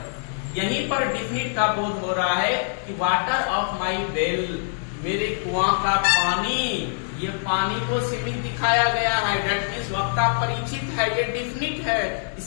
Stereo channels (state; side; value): silent; right; digital silence